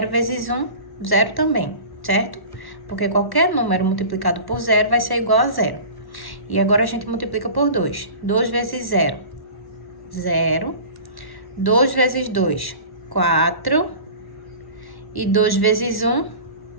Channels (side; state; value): right; late; 1.1 ms